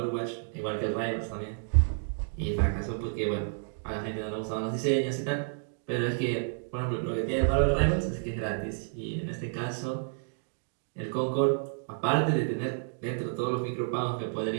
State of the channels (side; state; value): left; silent; digital silence